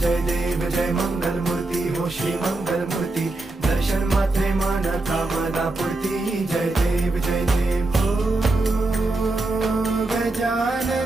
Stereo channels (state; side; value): quieter; left; 3.0 dB